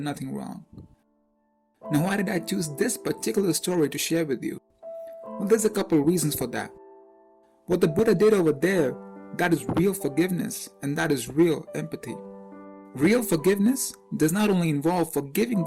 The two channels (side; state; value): both; identical; correlation 1.00